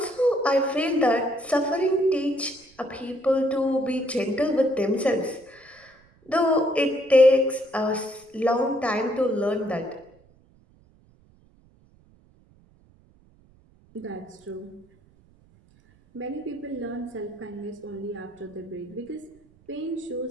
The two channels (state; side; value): noise; right; rumble, 30 dB below the sound